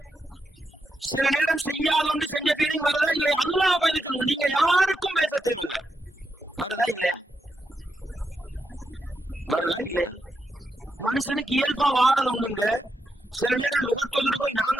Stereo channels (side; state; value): both; normal; correlation 0.85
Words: சில நேரம் செய்யாத ஒன்று செஞ்ச ஃபீலிங் வருதா இல்லையா? அல்லாஹ் பயந்து சொல்லுங்க, நீங்க யாருக்கும் பேச தேவையில்லை. வருதா இல்லையா? வருதா இல்லையா? மனுஷனுக்கு இயல்பா வாரது உண்டுங்க. சில நேரம் லுகர்த்தோதுட்டு போய் நாங்க